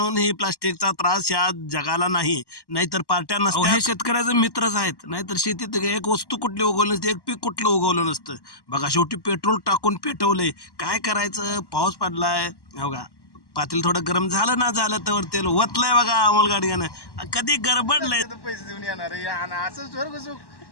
ही प्लास्टिकचा त्रास या जगाला नाही, नाहीतर पार्ट्या नसत्या. हे शेतकऱ्याचे मित्रच आहेत, नाहीतर शेतीत एक वस्तू कुठली उगवली नसते, एक पीक कुठलं उगवलं नसतं. बघा शेवटी पेट्रोल टाकून पेटवलंय. काय करायचं, पाऊस पडलाय. बघा पातेल थोडं गरम झालं ना, झालं तर तेल वतलंय बघा अमोल गाडग्यानं. कधी गडबडलंय. पैसे देऊन येणार असं स्वर्ग सुख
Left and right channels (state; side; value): late; right; 1.1 ms